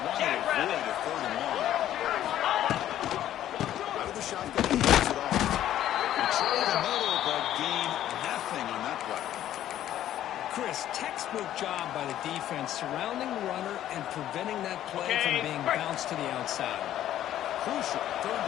want to Jack avoid Rabbit. a 3rd and long. Out of the shotgun, he gets it off. They try the middle, but gain nothing on that play. Chris, textbook job by the defense surrounding the runner and preventing that play Okay, from being break. bounced to the outside. Crucial. 3rd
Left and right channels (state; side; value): quieter; right; 12.1 dB